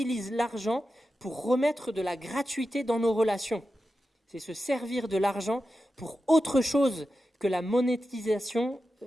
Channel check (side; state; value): both; normal; correlation 0.91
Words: l'argent pour remettre de la gratuité dans nos relations. C'est se servir de l'argent pour autre chose que la monétisation